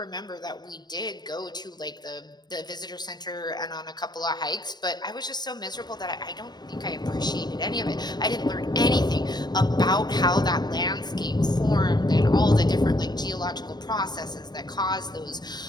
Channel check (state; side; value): late; right; 0.20 ms